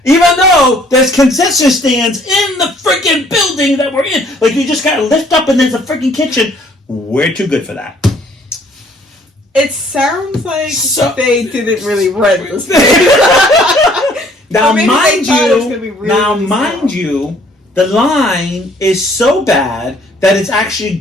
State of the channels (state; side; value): normal; both; correlation 0.60